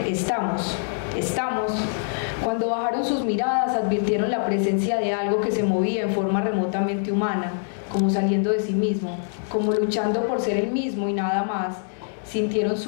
estamos. Cuando bajaron sus miradas, advirtieron la presencia de algo que se movía en forma remotamente humana, como saliendo de sí mismo, como luchando por ser el mismo y nada más. Sintieron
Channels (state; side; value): silent; right; digital silence